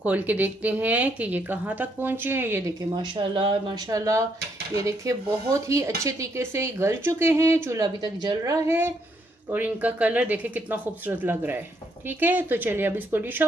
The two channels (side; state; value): both; normal; correlation 0.74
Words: खोल के देखते हैं कि ये कहाँ तक पहुँचे हैं। ये देखिए माशाल्लाह माशाल्लाह, ये देखिए बहुत ही अच्छे तरीके से गल चुके हैं। चूल्हा अभी तक जल रहा है और इनका कलर देखिए कितना खूबसूरत लग रहा है। ठीक है, तो चलिए अब इसको डिश